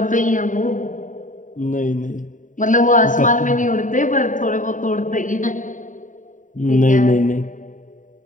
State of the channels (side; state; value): right; late; 0.37 ms